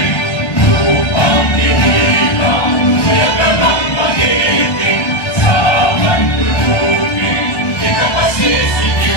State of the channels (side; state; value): right; late; 1.1 ms